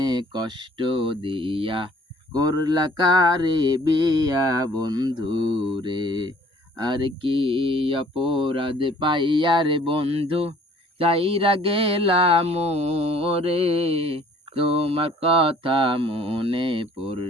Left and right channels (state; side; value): normal; both; correlation 0.55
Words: কষ্ট দিয়া করলা কারে বিয়া বন্ধু রে। আর কি অপরাধ পাইয়া রে বন্ধু চাইরা গেলাম রে, তোমার কথা মনে